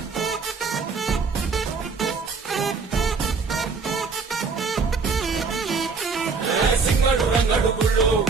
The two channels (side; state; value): left; quieter; 4.9 dB